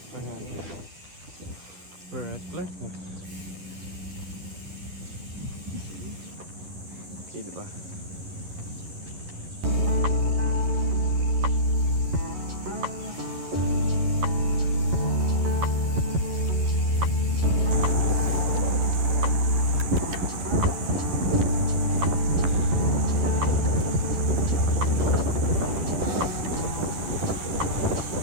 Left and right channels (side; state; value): left; late; 11 ms